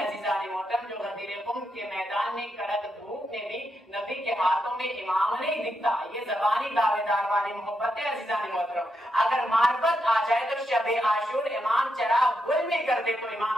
मोहतरम जो गदीर क़ुम के मैदान में कड़क धूप में भी नबी के हाथों में इमाम नहीं दिखता। ये जबानी दावेदार वाली मोहब्बत है अज़ीज़ान मोहतरम। अगर मारिफत आ जाए तो शब आशूर इमाम चराग गुल में कर दे तो इमाम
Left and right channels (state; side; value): normal; both; correlation 0.82